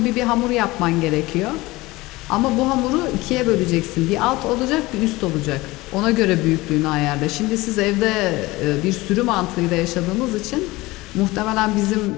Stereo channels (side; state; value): right; quieter; 20.5 dB